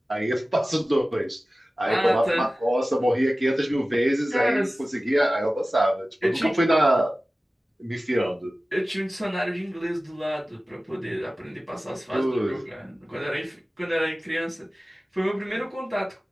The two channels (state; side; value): normal; both; correlation 0.96